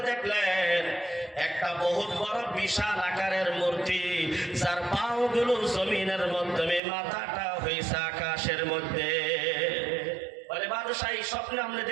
দেখলেন একটা বহুত বড় বিশাল আকারের মূর্তি, যার পাও গুলো জমিনের মাধ্যমে, মাথাটা হয়েছে আকাশের মধ্যে। বলে, বাদশা এই স্বপ্নে আপনি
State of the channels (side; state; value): left; drops out; at 6.8 s